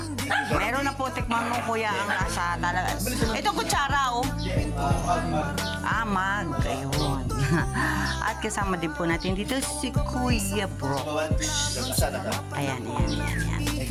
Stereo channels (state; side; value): identical; both; correlation 1.00